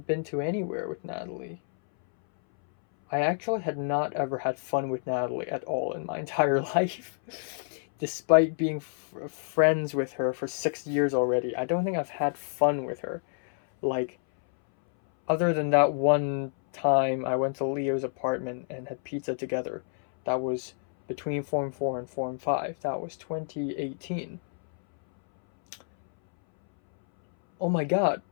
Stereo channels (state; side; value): silent; right; 59 dB below the other